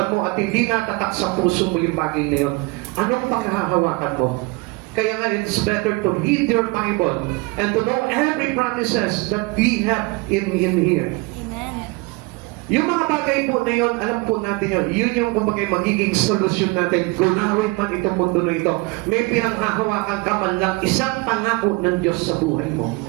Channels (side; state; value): left; quieter; 25.5 dB